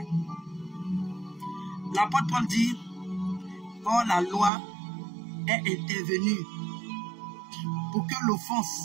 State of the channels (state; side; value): drops out; left; at 4.5 s